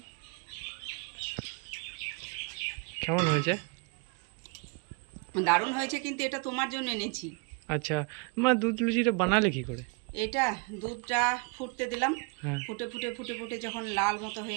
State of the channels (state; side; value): quieter; left; 32.0 dB